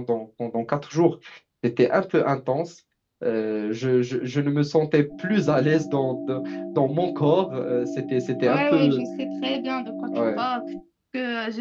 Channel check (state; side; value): identical; both; correlation 1.00